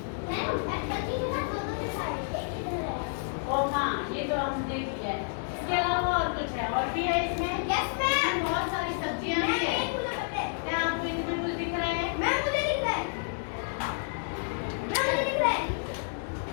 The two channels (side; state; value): right; silent; 58 dB below the other